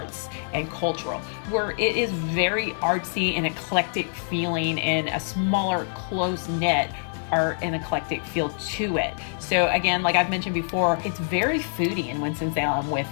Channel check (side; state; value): right; silent; 59 dB below the other